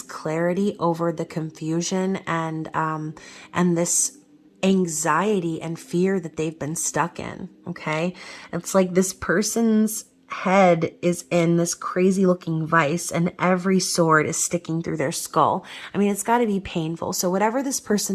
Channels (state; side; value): identical; both; correlation 1.00